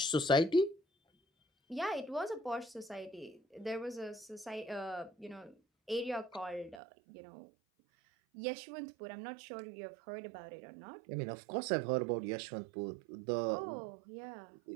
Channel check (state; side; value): drops out; left; at 6.8 s